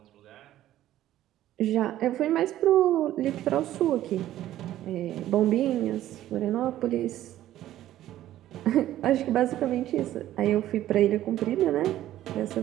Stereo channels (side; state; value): left; quieter; 13.3 dB